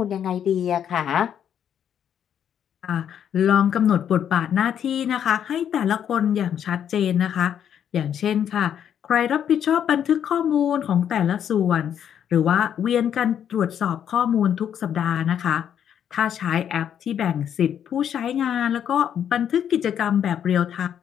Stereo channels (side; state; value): right; quieter; 9.1 dB